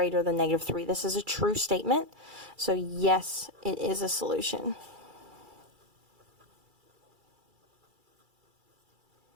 than negative 3. This is a true statement. So yes, it is a solution.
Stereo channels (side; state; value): left; late; 2.3 ms